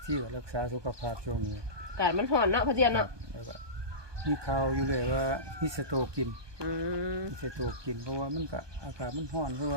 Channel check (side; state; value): left; late; 1.2 ms